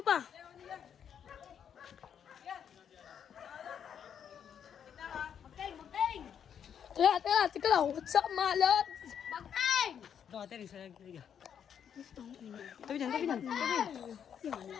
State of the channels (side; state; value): right; quieter; 8.3 dB